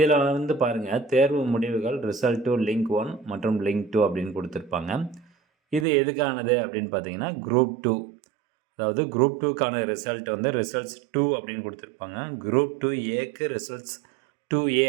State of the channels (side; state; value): left; drops out; at 5.9 s